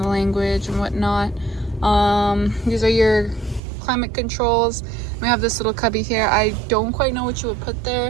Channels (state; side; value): drops out; left; at 3.6 s